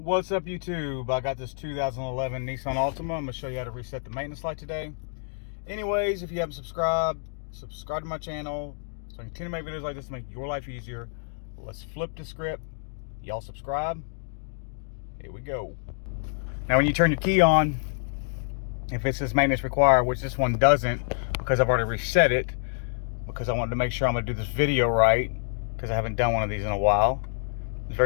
up, YouTube? I got this 2011 Nissan Altima. I'm going to show you how to reset the maintenance light today. Anyways, if you haven't subscribed, subscribe to my channel so I can continue to make videos like this to make your life easier. Let's flip the script. Y'all subscribe. Here we go. Now, when you turn your key on, if it says maintenance required, which this one doesn't because I've already reset it, because I wanted to make sure I'm going to do this video right because I haven't done one of these in a while. It's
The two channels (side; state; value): right; silent; digital silence